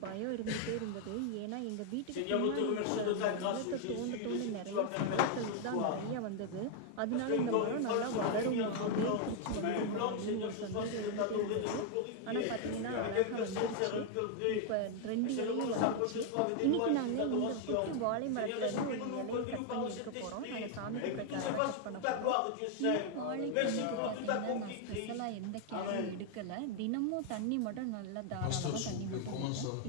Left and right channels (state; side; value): different; both; correlation 0.00